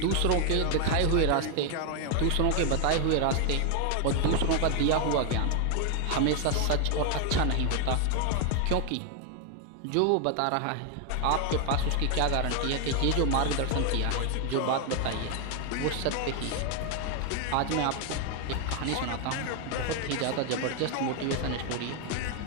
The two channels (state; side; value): different; both; correlation 0.01